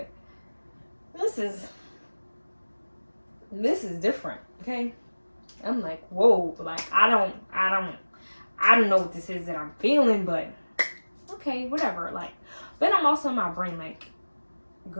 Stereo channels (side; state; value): both; inverted; correlation -1.00